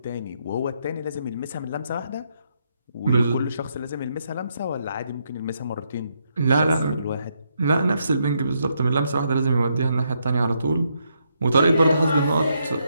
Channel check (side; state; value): both; inverted; correlation -0.77